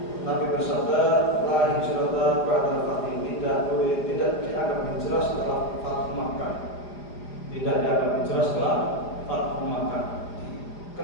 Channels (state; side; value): late; right; 4.9 ms